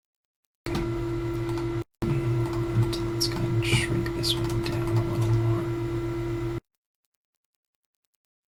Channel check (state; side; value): identical; both; correlation 1.00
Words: And let's go ahead and shrink this one down a little more.